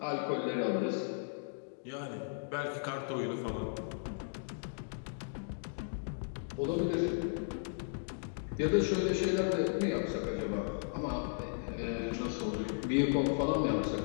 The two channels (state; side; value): silent; right; digital silence